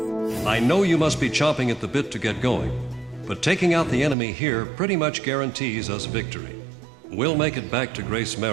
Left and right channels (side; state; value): left; drops out; at 4.2 s